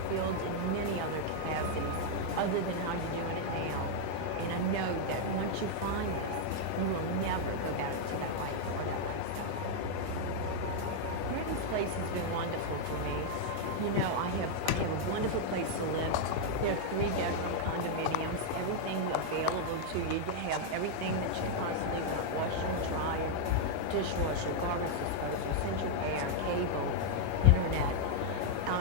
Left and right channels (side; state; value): both; different; correlation -0.01